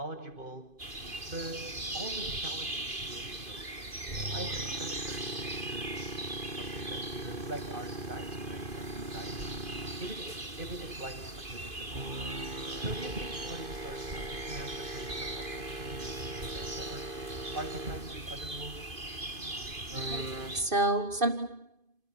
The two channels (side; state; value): left; late; 2.5 ms